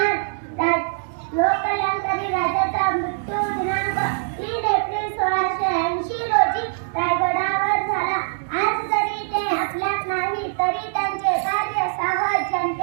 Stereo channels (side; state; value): left; silent; digital silence